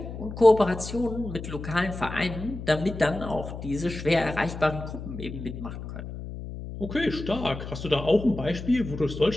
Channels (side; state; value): left; noise; hum, 9 dB below the sound